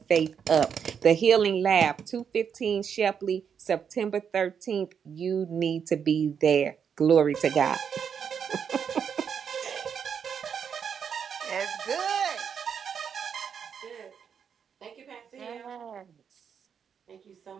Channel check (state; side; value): quieter; left; 7.3 dB